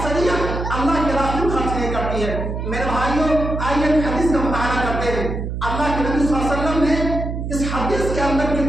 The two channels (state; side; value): noise; right; hum, 4 dB below the sound